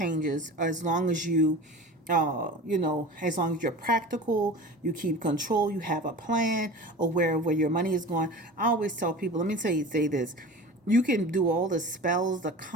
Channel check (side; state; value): both; normal; correlation 0.35